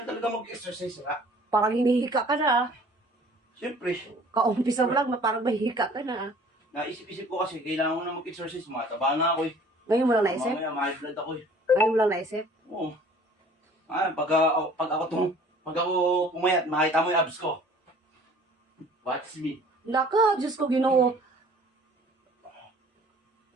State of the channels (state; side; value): normal; both; correlation 0.51